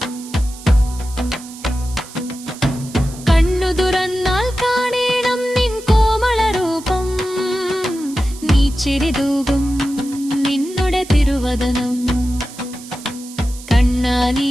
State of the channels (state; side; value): noise; right; hiss, 17 dB below the sound